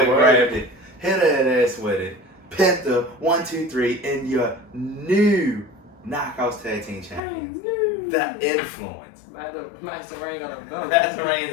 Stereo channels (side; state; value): right; drops out; at 7.2 s